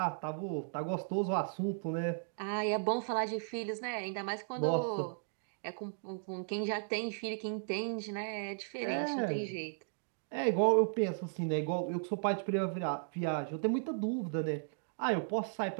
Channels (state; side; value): silent; left; digital silence